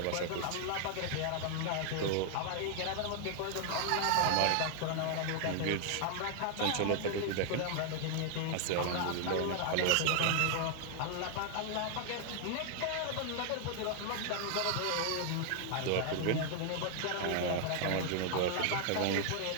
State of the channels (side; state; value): both; different; correlation 0.00